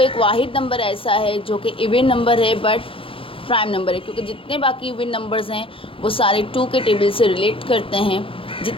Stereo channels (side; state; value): right; late; 0.26 ms